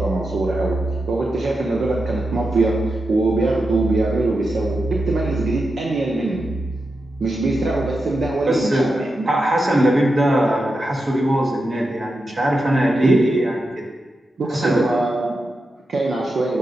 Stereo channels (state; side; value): normal; both; correlation 0.88